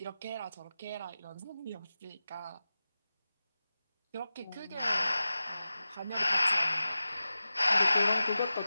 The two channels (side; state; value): both; inverted; correlation -0.95